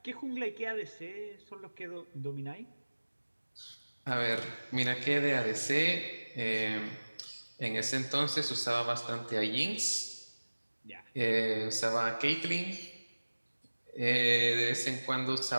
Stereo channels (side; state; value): both; inverted; correlation -1.00